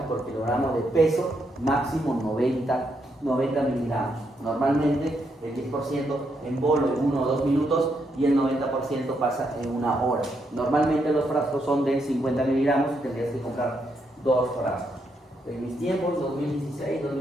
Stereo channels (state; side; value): normal; both; correlation 0.79